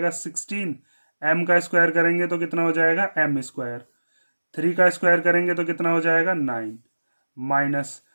16, m का स्क्वायर करेंगे तो कितना हो जाएगा m स्क्वायर, 3 का स्क्वायर करेंगे तो कितना हो जाएगा 9 माइनस,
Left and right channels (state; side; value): inverted; both; correlation -1.00